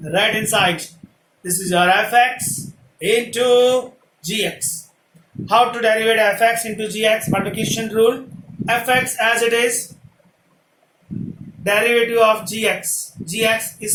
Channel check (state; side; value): identical; both; correlation 1.00